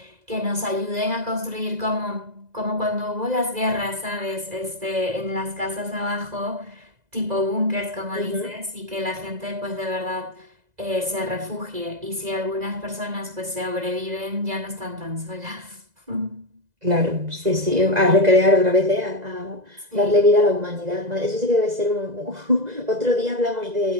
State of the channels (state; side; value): late; left; 2.0 ms